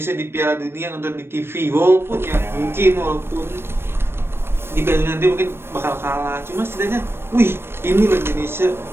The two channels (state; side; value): late; left; 0.12 ms